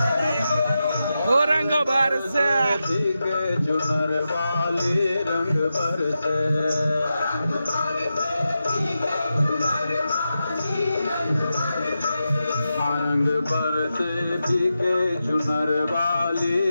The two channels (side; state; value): both; inverted; correlation -0.90